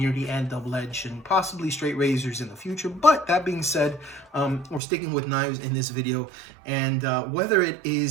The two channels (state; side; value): drops out; left; at 4.8 s